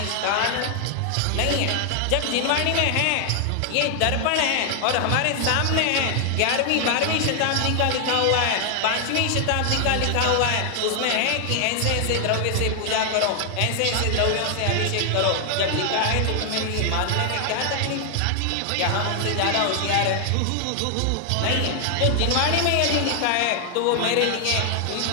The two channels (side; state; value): both; different; correlation 0.00